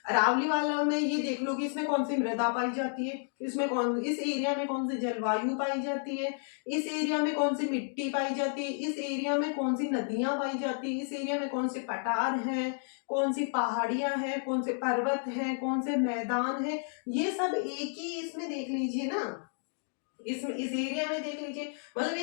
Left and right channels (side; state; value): right; silent; 57 dB below the other